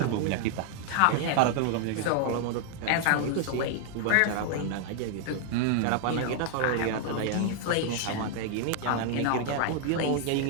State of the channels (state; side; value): different; both; correlation 0.00